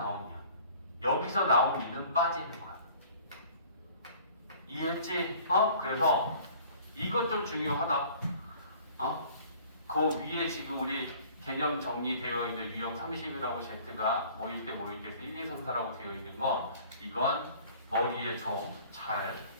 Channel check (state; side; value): inverted; both; correlation -0.50